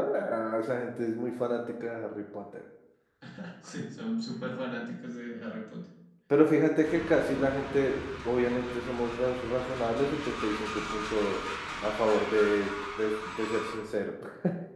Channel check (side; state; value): both; identical; correlation 1.00